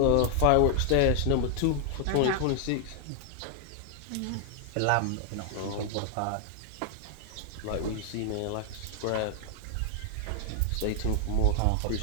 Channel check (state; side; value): different; both; correlation 0.00